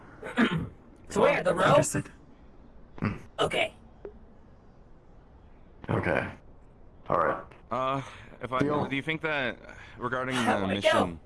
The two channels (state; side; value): identical; both; correlation 1.00